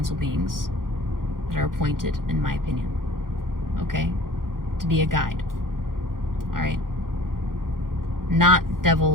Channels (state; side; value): late; left; 0.91 ms